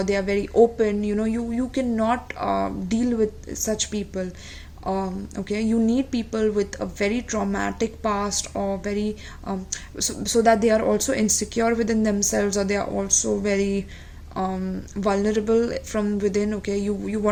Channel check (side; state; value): both; identical; correlation 1.00